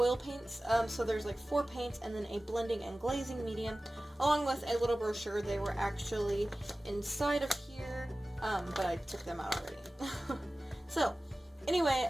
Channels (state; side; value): normal; both; correlation 0.97